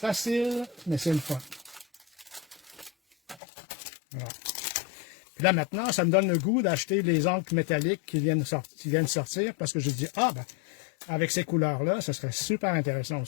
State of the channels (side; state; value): right; drops out; at 3.4 s